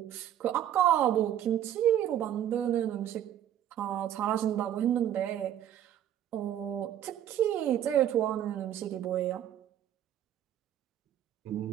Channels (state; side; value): quieter; left; 11.0 dB